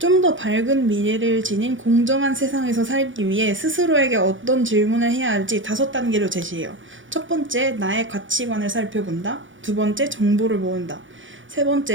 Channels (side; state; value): left; late; 0.56 ms